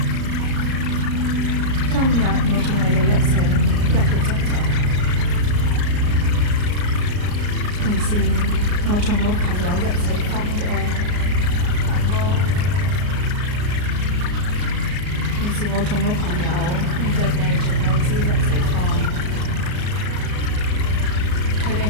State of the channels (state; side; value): late; left; 34 ms